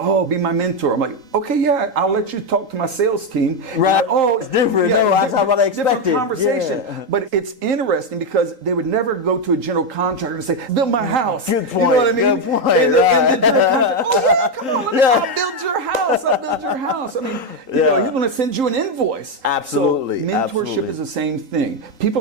be my mentor." I'm like, "Okay, yeah, I'll let you talk to my sales team." Right. Like, oh, it's different. No, that's not what I expected. Different conversation. Yeah. But it's interesting because they would never go to a general contractor and say, "Build my house." Good point. You know what I mean? Good point. And the general contractor, "Oh yeah, come on, I'll build your house. I'll build your house." I mean, you know, he's going to send you an invoice. Absolutely. So mentorship is the same thing. People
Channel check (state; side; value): late; left; 3.8 ms